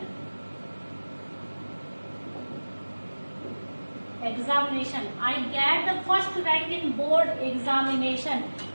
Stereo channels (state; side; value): inverted; both; correlation -1.00